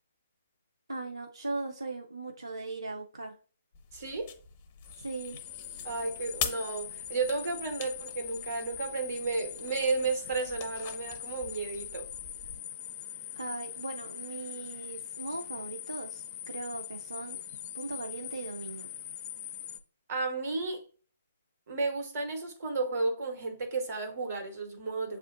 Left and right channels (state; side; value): inverted; both; correlation -0.63